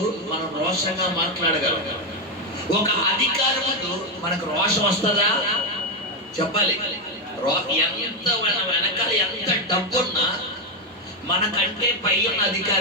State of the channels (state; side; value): normal; both; correlation 0.06